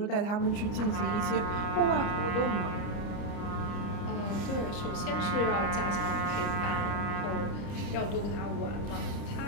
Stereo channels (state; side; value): late; right; 30 ms